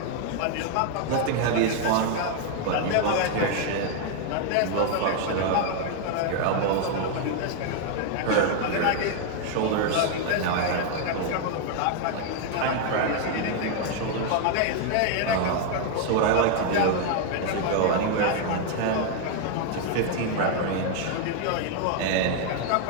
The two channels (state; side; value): different; both; correlation 0.00